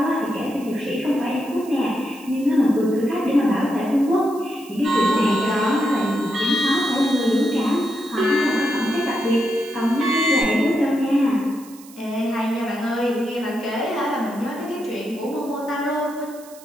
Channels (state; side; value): noise; right; hiss, 21 dB below the sound